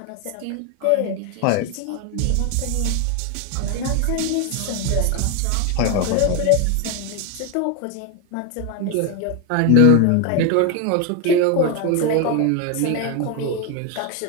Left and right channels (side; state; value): both; different; correlation 0.01